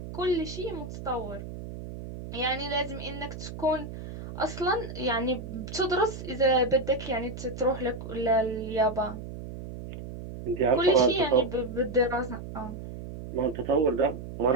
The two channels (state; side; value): noise; right; hum, 10 dB below the sound